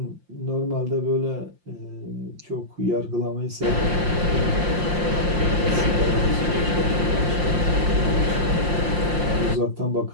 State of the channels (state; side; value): late; left; 5.7 ms